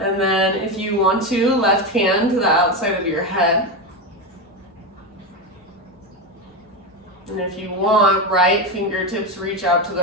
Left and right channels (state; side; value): normal; both; correlation 0.14